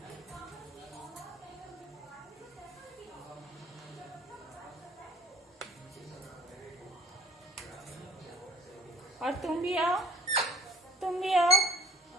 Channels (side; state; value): both; normal; correlation 0.53